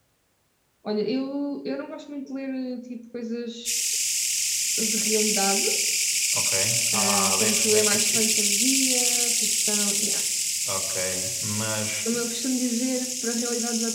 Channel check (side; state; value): both; identical; correlation 1.00